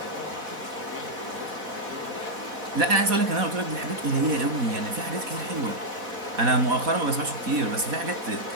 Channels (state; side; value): late; left; 4.1 ms